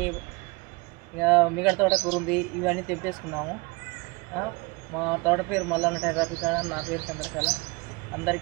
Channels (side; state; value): left; quieter; 26.3 dB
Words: ఇక మిగతా తోటకూర ఉంది. ఇవన్నీ తెంపేసుకున్నాము. మా తోట పేరు మల్లన్న టెర్రపీ కాడ, నా పేరు చంద్రకళ.